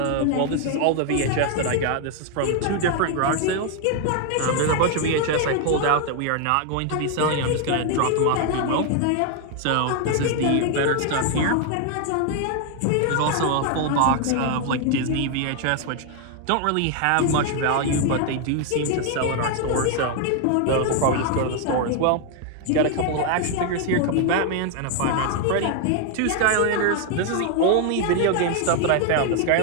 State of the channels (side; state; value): both; different; correlation 0.00